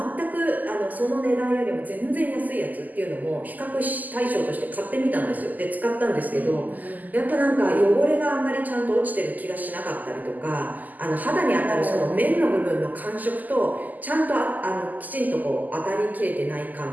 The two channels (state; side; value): late; left; 0.082 ms